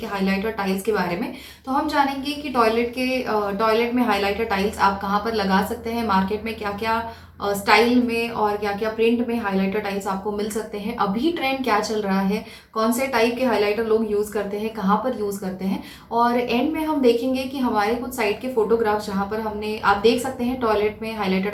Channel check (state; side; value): identical; both; correlation 1.00